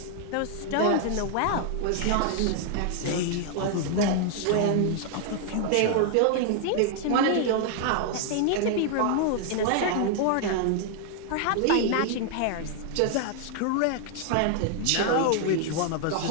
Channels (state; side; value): different; both; correlation 0.00